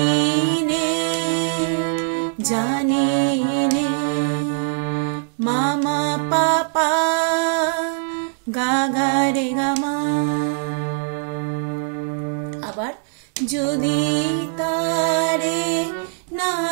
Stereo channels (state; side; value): silent; left; digital silence